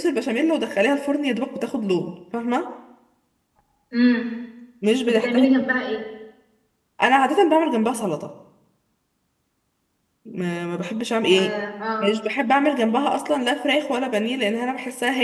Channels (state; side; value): identical; both; correlation 1.00